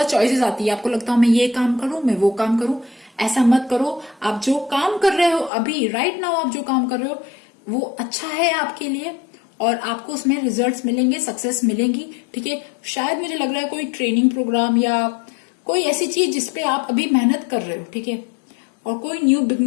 चॉइसेस आती है, आपको लगता है मैं ये काम करूं, मैं वो काम करूं। ऐसा मत करो। आप जो काम कर रहे हो अभी राइट नाउ आप जो काम कर रहे हो वो अच्छा है आपके लिए और आपको उसमें रिजल्ट्स मिलेंगे, सक्सेस मिलेंगी। ठीक है, शायद मुझे लग रहा है कोई ट्रेनिंग प्रोग्राम या कोई ऐसी चीज जिसपे आप अभी मेहनत कर रहे हो। ठीक है, और कोई न्यू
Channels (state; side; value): drops out; right; at 5.5 s